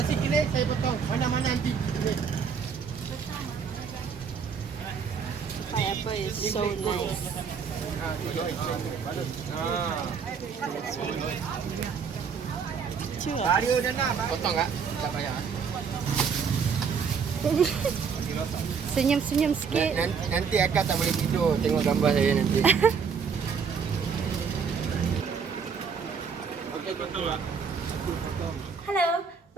kini saya potong. Mana-mana nanti kini. Pineapple is so nice. Chưa. Bario dah nak. Potong tak? Tak payah. Senyum-senyum sikit. Nanti akak tak boleh tidur tengok gambar saya nanti. Hello,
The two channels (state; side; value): quieter; left; 6.2 dB